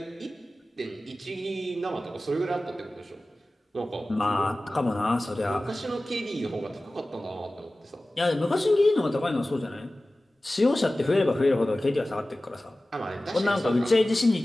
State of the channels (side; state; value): both; normal; correlation 0.97